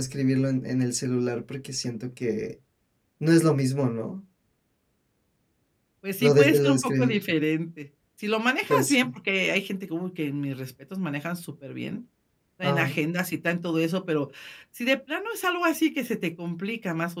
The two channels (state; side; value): identical; both; correlation 1.00